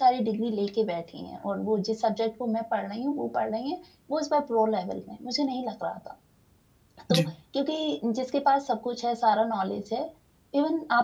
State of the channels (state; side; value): identical; both; correlation 1.00